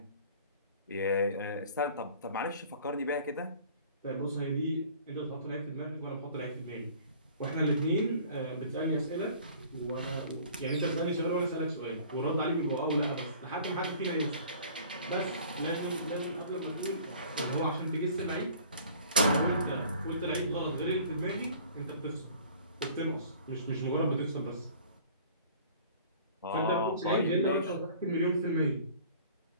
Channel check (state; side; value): inverted; both; correlation -0.48